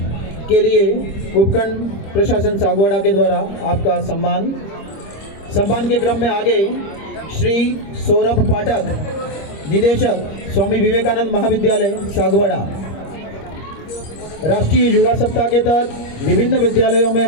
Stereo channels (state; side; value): late; right; 26 ms